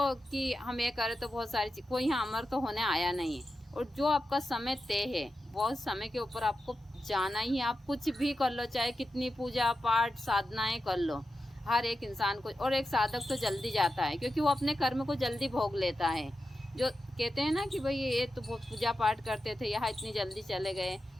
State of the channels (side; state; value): both; normal; correlation 0.91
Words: कि हम ये करें तो बहुत सारी चीज़, कोई यहाँ अमर तो होने आया नहीं है। और जो आपका समय तय है बहुत समय के ऊपर आपको जाना ही है। आप कुछ भी कर लो, चाहे कितनी पूजा पाठ साधनाएं कर लो, हर एक इंसान को। और एक साधक तो जल्दी जाता है क्योंकि वो अपने कर्म को जल्दी भोग लेता है। जो कहते हैं ना कि भाई ये तो बहुत पूजा पाठ करते थे यहाँ इतनी जल्दी चले गए,